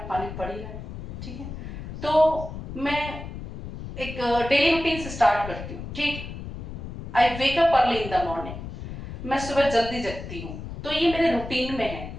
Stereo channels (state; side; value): noise; left; rumble, 9 dB below the sound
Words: पानी पड़ ही रहा है। ठीक है, तो मैं एक डेली रूटीन से स्टार्ट करती हूँ। ठीक, I wake up early in the morning, मैं सुबह जल्दी जगती हूँ, तो ये मेरे रूटीन में